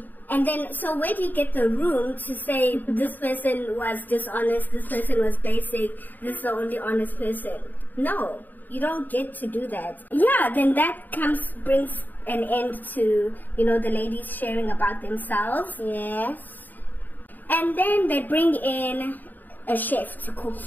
And then, so where do you get the room to say this person was dishonest, this person was basic, this is the only honest person? No, you don't get to do that. Yeah, then that brings an end to, the ladies sharing about themselves. Yes. And then they bring in a chef to cook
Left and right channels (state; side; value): late; right; 0.087 ms